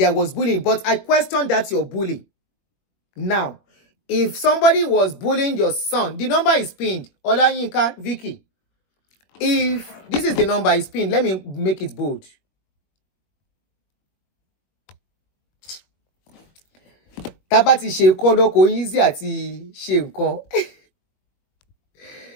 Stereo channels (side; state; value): right; late; 21 ms